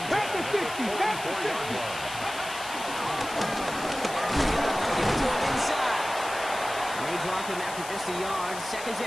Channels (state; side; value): noise; left; hiss, 11 dB below the sound